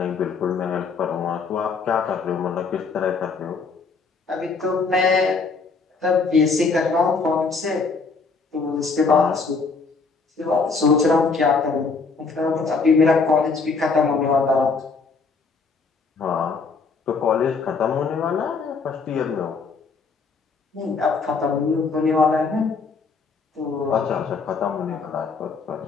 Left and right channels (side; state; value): right; quieter; 4.6 dB